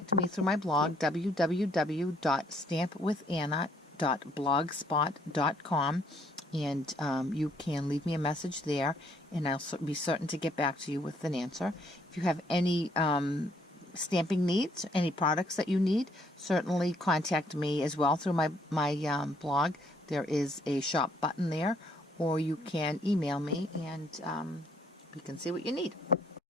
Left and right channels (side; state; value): both; normal; correlation 0.67